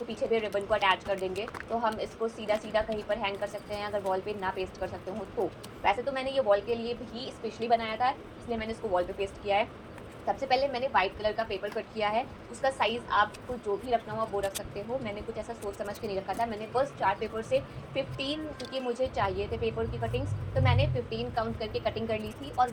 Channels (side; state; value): both; identical; correlation 1.00